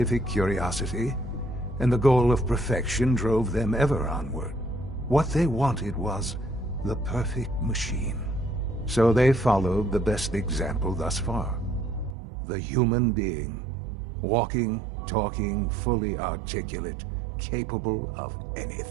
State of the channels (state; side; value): drops out; left; at 12.2 s